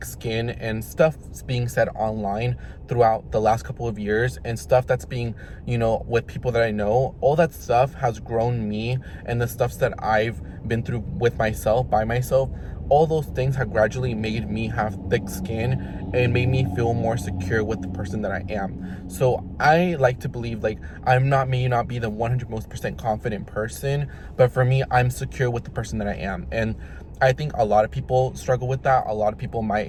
skin, and stuff being said online throughout the last couple of years, and stuff that's being, you know, with people that I know, all that stuff has grown me, and the stuff that I've been through with myself, by myself, all those things have gradually made me have thick skin and made me feel more secure with the person that I am. So I like to believe, like, may not be the 100% confident person, but for me, I'm secure with the person that I am. And I think a lot of people struggle with that. A lot of people my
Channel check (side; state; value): both; identical; correlation 1.00